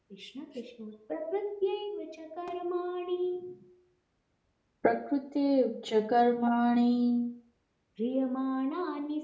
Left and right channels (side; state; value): both; identical; correlation 1.00